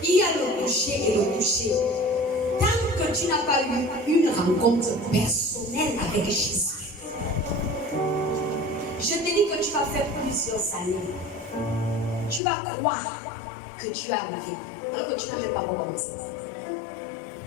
il y a le toucher et le toucher. Tant que tu n'as pas eu une rencontre personnelle avec Jésus, je te dis que tu vas faire plusieurs années. Tu vas croire que tu as arrivé, alors que tu n'as même pas recommencé.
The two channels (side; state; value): right; drops out; at 12.4 s